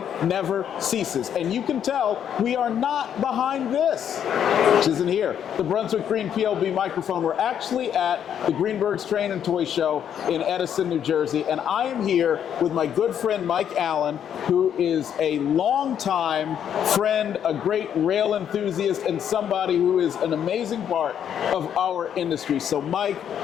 never ceases. And you can tell we are not behind this, which isn't here, the Brunswick Green PLB microphone. We're actually at the Greenberg's Train and Toy Show in Edison, New Jersey, and I am here with my good friend Mike Allen, who is a longtime friend, a great rail enthusiast, and somebody who is an amazing part of our industry. So Mike,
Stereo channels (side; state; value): right; quieter; 9.1 dB